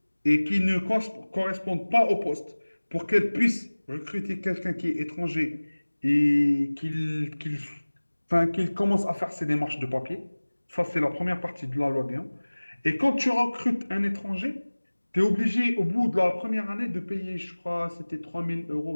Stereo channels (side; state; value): both; inverted; correlation -1.00